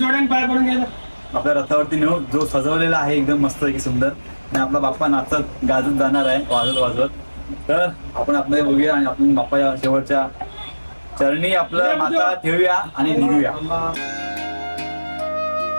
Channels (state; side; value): inverted; both; correlation -1.00